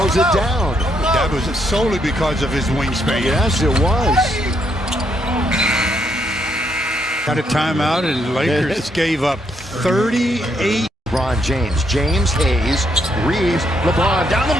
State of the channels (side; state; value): both; normal; correlation 0.75